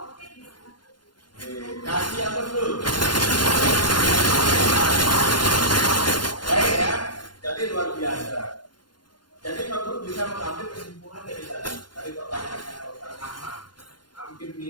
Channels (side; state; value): right; late; 0.71 ms